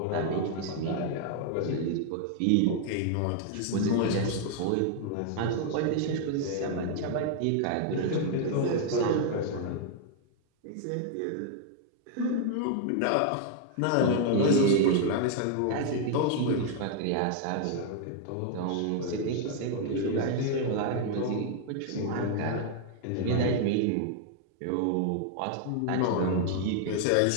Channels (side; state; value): both; different; correlation 0.00